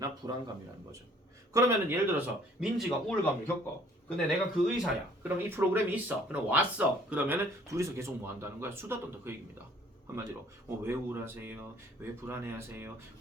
불안감이라는 거죠. 그러면은 예를 들어서 민지가 우울감을 겪어. 근데 내가 그 의사야. 그럼 이 프로그램이 있어. 그럼 왔어. 그러면은 둘이서 계속 뭐 한다는 거야? 수다 떤다 그 얘기입니다. 한마디로 왜 우울하세요? 왜 불안해하세요?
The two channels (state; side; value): normal; both; correlation 0.57